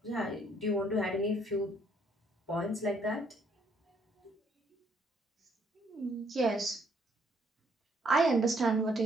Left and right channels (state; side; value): normal; both; correlation 0.67